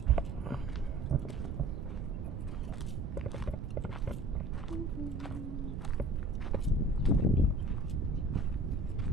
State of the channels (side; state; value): right; noise; rumble, 6 dB below the sound